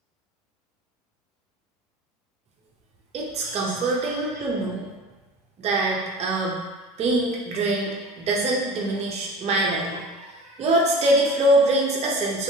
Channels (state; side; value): normal; both; correlation 0.36